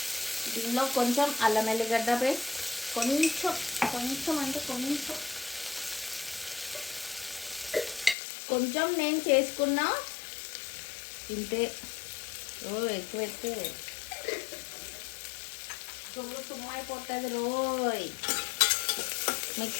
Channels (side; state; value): right; drops out; at 8.2 s